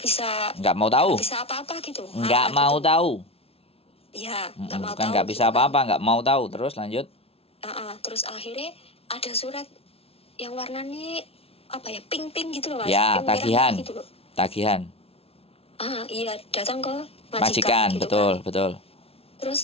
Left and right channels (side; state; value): right; late; 0.28 ms